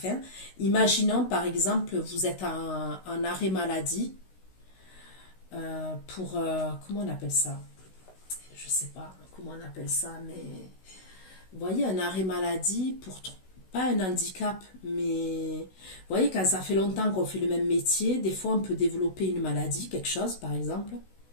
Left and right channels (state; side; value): late; right; 16 ms